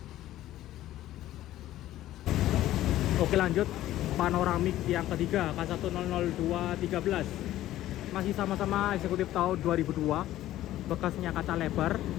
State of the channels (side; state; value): right; quieter; 14.1 dB